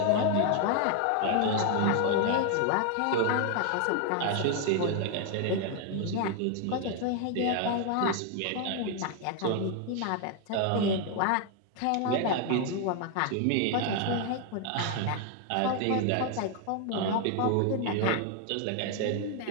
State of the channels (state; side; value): different; both; correlation 0.01